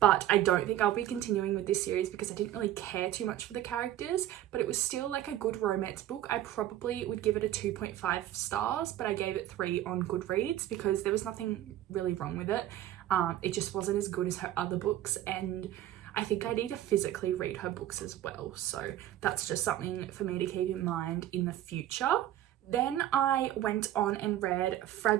I don't think I'll be continuing with this series because I didn't really care too much for the characters, but it was still like a good romance book. I probably would give it a 2.5 stars, but I gave it 3 on Goodreads because there was nothing really wrong with it. It just wasn't as good as her other books, and I think I need to physically read her books as well. So that's just something for me to keep in mind in the future. Then I went on and read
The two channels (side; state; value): left; quieter; 12.8 dB